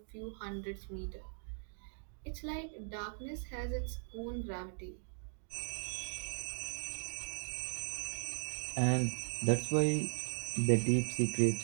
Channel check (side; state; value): left; silent; digital silence